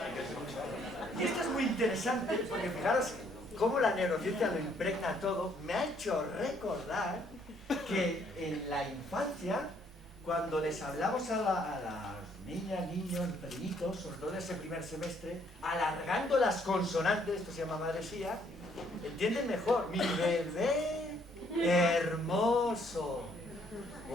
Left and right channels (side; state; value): both; normal; correlation 0.67